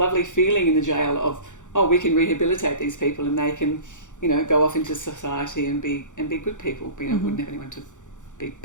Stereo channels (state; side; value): late; right; 0.86 ms